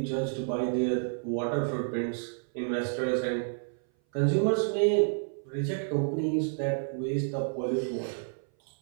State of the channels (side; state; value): left; silent; 57 dB below the other